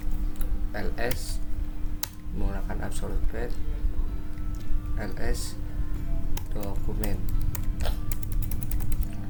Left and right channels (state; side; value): identical; both; correlation 1.00